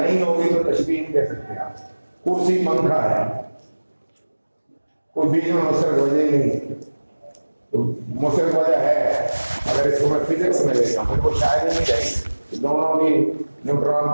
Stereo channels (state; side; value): inverted; both; correlation -1.00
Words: ہوگی تو تشبیہ نہیں دے سکتے آپ. کرسی پنکھا ہے, کوئی بیچ میں مشترک وجہ ہی نہیں تو مشترک وجہ ہے. اگر اس کو میں فزکس میں لے جاؤں پھر وہ شاید ہی نہیں رہے گی. دونوں بھی نیوٹران